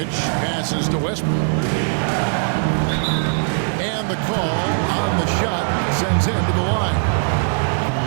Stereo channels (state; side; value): silent; left; 65 dB below the other